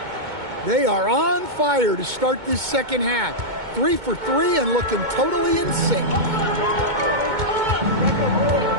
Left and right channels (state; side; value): late; left; 2.2 ms